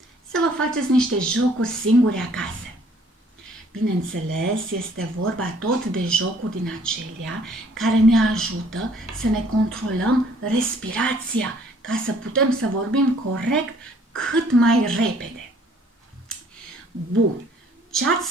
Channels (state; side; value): normal; both; correlation 0.59